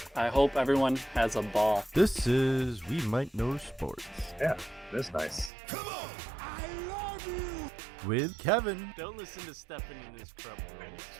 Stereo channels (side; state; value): left; drops out; at 5.5 s